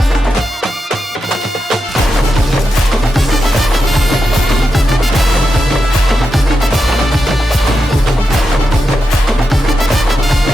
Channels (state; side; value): normal; both; correlation 0.88